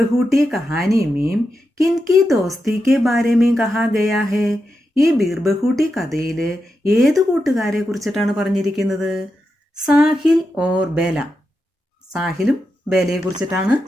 कहानी में किनकी दोस्ती के बारे में कहा गया है? ഈ ബീർ ബഹൂട്ടി കഥയിൽ ഏത് കൂട്ടുകാരെ കുറിച്ചിട്ടാണ് പറഞ്ഞിരിക്കുന്നത്? സാഹിൽ ഓർ ബേല. സാഹിലും ബേലയെ കുറിച്ചിട്ടാണ്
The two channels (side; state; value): both; normal; correlation 0.87